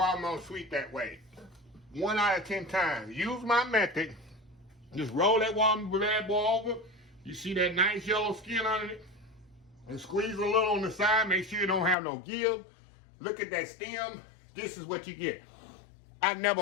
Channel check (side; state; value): right; drops out; at 12.0 s